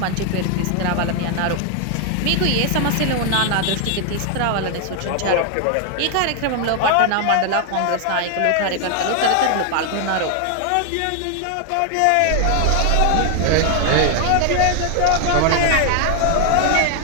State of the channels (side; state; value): both; different; correlation 0.00